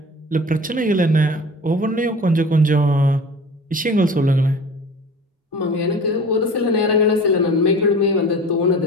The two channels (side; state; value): both; normal; correlation 0.39